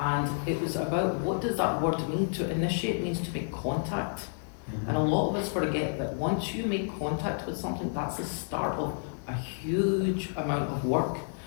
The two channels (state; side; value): silent; right; digital silence